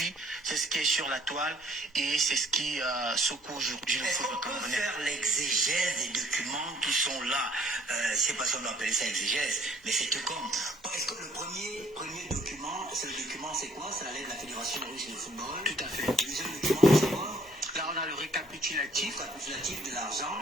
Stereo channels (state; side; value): normal; both; correlation 0.62